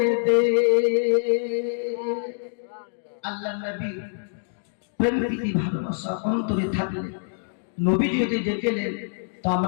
দেশ। আল্লাহ নবী প্রেম প্রীতি ভালোবাসা অন্তরে থাকলে নবী যদি ডেকেলেন তো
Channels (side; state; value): right; silent; digital silence